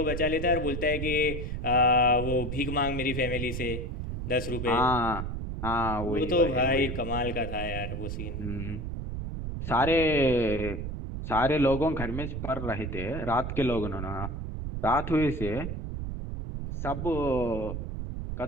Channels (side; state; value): right; noise; rumble, 5 dB below the sound